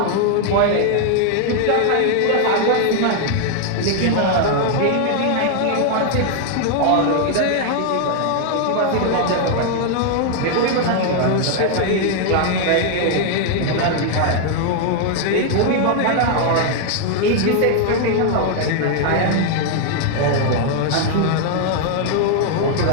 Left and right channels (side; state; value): both; different; correlation 0.00